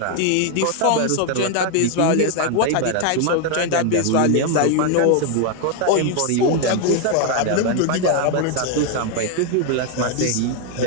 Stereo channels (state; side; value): different; both; correlation 0.01